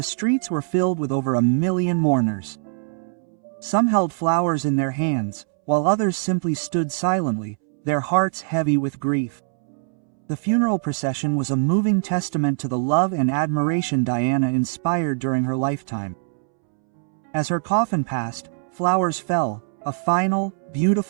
streets were filled with over 1 million mourners. Some held flowers in their hands, while others simply stood silently, their hearts heavy with grief. The funeral procession was a moving testament to the love and admiration Diana inspired during her lifetime. As her coffin passed, flowers fell, a final,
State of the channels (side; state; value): left; silent; 64 dB below the other